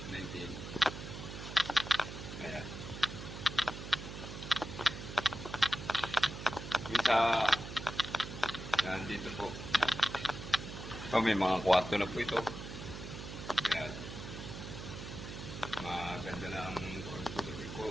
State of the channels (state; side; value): noise; right; hum, 9 dB below the sound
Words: 19. Ayan. Minsa, nandito po. Ito, may mga kwarto na po ito. Ayan. Maganda lang ko